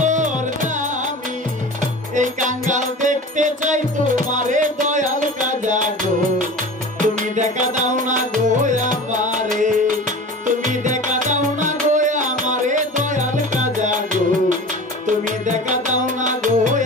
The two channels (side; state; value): both; normal; correlation 0.36